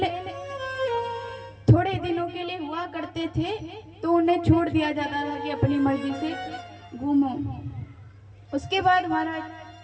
थोड़े दिनों के लिए हुआ करते थे तो उन्हें छोड़ दिया जाता था कि अपनी मर्जी से घूमो। उसके बाद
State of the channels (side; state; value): both; identical; correlation 1.00